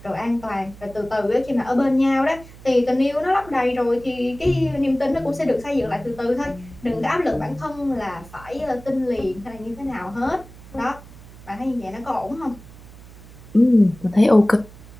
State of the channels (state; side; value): noise; right; hum, 19 dB below the sound